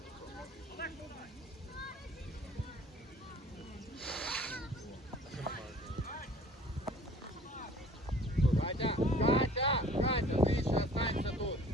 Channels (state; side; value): normal; both; correlation 0.50